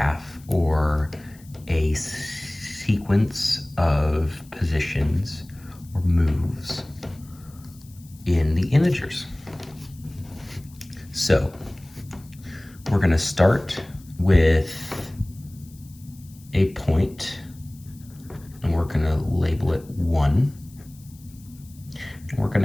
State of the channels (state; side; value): noise; left; hiss, 25 dB below the sound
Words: or a sequence of positions or moves in the integers. So we're going to start with a point, and we're going to label it 1. And we're going